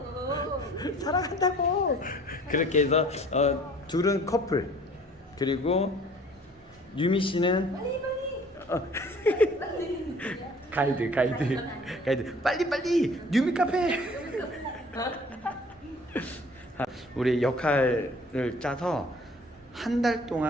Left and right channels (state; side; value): normal; both; correlation 0.52